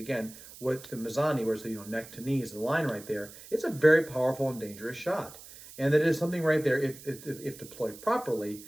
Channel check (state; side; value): noise; right; hiss, 17 dB below the sound